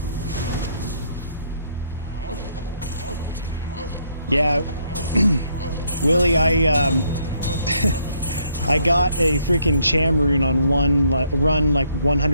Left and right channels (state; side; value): inverted; both; correlation -0.70